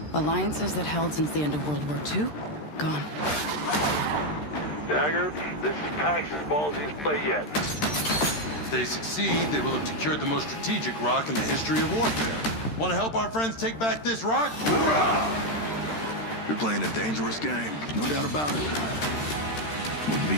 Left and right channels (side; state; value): right; late; 13 ms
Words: Alliances that held since the end of World War II, gone. Dagger, this is Pax's ballsiest play yet. If they succeed, they will have secured the most strategic rock in the history of warfare. Want to help our friends take back this rock? You're playing a dangerous game, no doubt about it. Wouldn't be